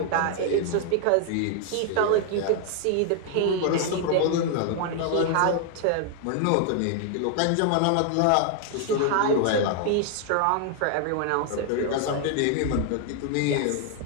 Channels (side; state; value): both; different; correlation 0.00